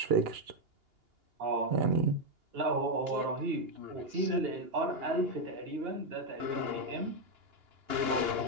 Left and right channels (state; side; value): late; left; 2.8 ms